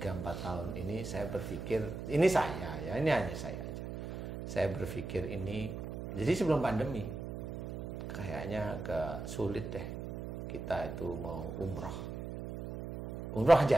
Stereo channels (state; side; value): noise; right; hum, 7 dB below the sound